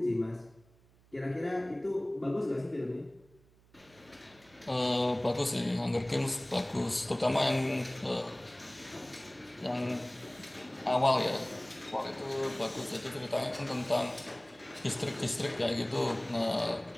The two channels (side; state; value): right; noise; hum, 29 dB below the sound